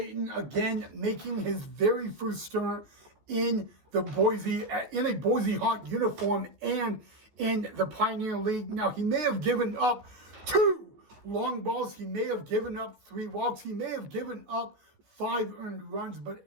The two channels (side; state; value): left; late; 14 ms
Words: again making his very first start in a Boise Hawk uniform and in the Pioneer League. Now, he may have given up 2 long balls. He may have given up 3 walks. He may have given up 5 earned runs. But